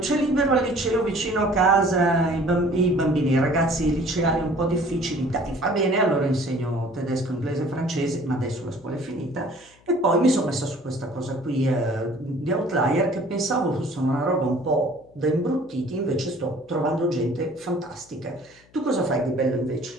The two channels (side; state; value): left; noise; hum, 29 dB below the sound